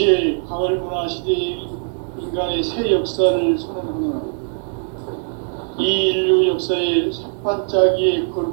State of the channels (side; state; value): left; silent; 65 dB below the other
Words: 가을 문화 시대의 인간의 새 역사를 선언하노라. 이 인류 역사의 삿발짜기의